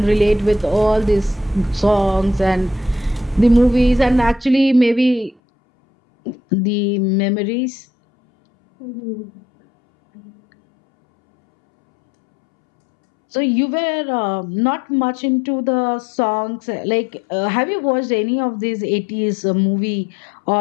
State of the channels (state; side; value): drops out; right; at 5.4 s